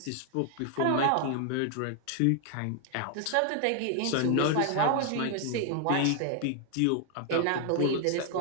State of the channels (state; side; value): different; both; correlation 0.00